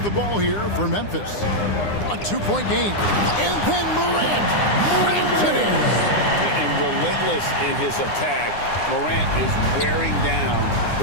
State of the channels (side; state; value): right; late; 9.8 ms